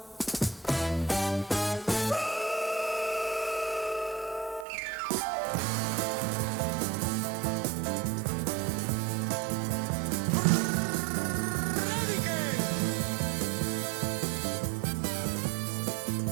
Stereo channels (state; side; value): drops out; left; at 4.7 s